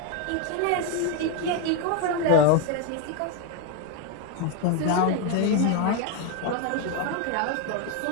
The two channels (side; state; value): both; different; correlation 0.02